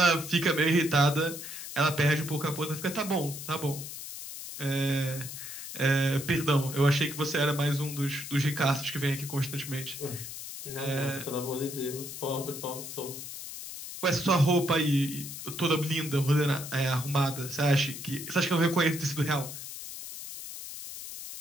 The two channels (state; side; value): noise; left; hiss, 10 dB below the sound